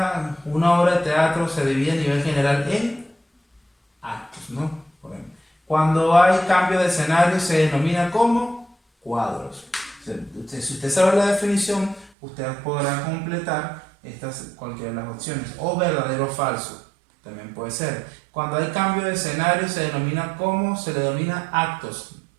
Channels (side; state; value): left; drops out; at 12.1 s